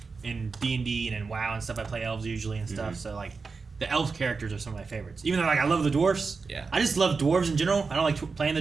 in D&D and in WoW and stuff, I play elves usually and stuff. So like the elf characters are some of my favorites. Even though like I love the dwarves. Yeah. I just love dwarves in general. I don't like playing the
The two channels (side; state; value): left; quieter; 4.6 dB